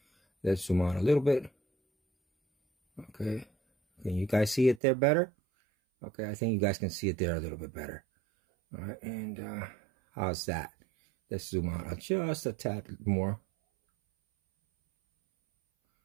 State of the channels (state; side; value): drops out; left; at 4.8 s